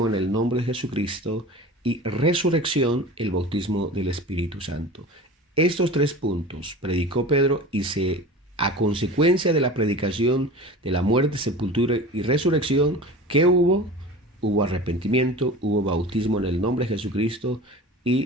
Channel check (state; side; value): normal; both; correlation 0.36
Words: en el nombre de Jesucristo y resurrección el bautismo del Espíritu Santo. Estos 3 puntos predicó Pedro y a consecuencia de la predicación de la muerte, sepultura y resurrección, ¿qué hubo? Hubo arrepentimiento, hubo bautismo en el nombre de Jesucristo